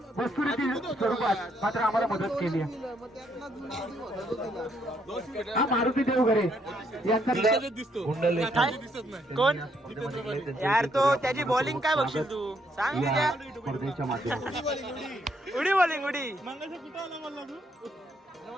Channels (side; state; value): both; normal; correlation 0.73